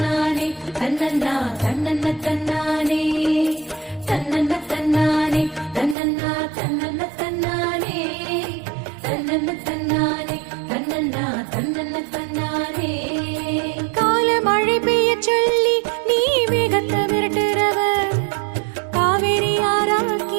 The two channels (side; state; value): left; drops out; at 6.0 s